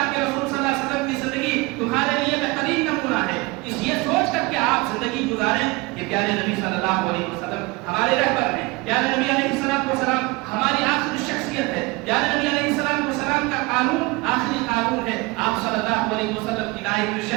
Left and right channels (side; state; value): left; quieter; 24.0 dB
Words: کے رسول صلی اللہ علیہ وسلم کی زندگی تمہارے لیے بہترین نمونہ ہے۔ اس یہ سوچ کر کے آپ زندگی گزاریں کہ پیارے نبی صلی اللہ علیہ وسلم ہمارے رہبر ہیں، پیارے نبی علیہ السلام ہماری آخری شخصیت ہے، پیارے نبی علیہ السلام کا قانون آخری قانون ہے، آپ صلی اللہ علیہ وسلم کی لائے ہوئی